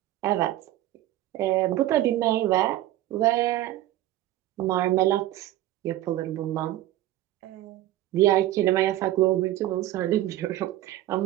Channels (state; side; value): quieter; left; 14.7 dB